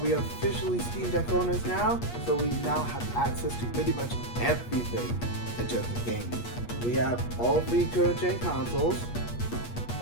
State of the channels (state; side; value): late; right; 8.4 ms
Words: we are officially Steam Deck owners now, so we now have access to pretty much everything in terms of gaming. We have all 3 current gen consoles.